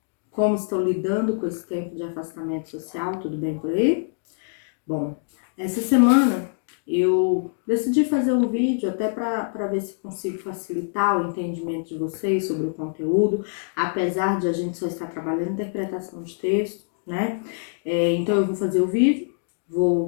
Como estão lidando com esse tempo de afastamento social? Tudo bem por aí? Bom, essa semana eu decidi fazer um vídeo até para ver se consigo facilitar o entendimento de vocês sobre o conteúdo, apesar de a gente só estar trabalhando interpretação de texto, né? Então eu vou fazer o vídeo,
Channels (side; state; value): right; silent; digital silence